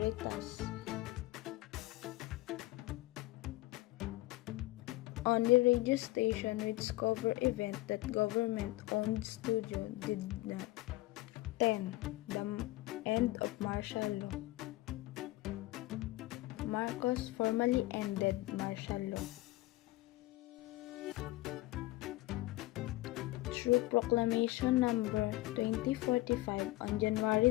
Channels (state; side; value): quieter; right; 18.7 dB